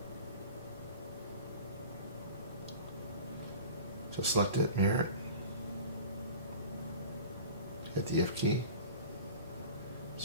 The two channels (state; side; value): inverted; both; correlation -0.38